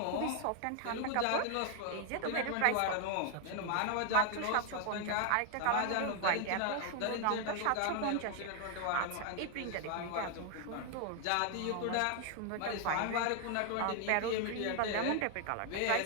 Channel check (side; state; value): both; different; correlation 0.00